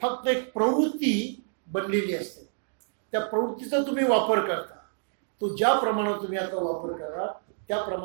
एक प्रवृत्ती बनलेली असते, त्या प्रवृत्तीचा तुम्ही वापर करता, तो ज्या प्रमाणात तुम्ही आता वापर करा त्या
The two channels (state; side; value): silent; left; digital silence